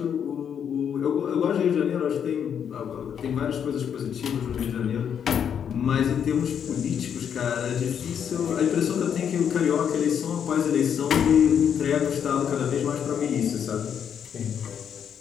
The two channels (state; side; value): quieter; right; 8.2 dB